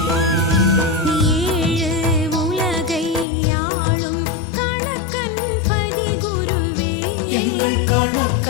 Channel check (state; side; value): drops out; right; at 3.2 s